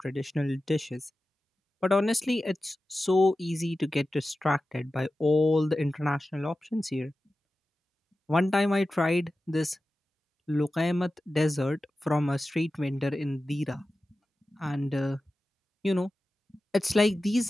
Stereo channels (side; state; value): both; normal; correlation 0.94